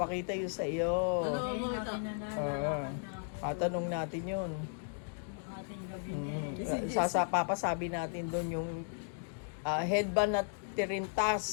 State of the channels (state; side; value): silent; right; digital silence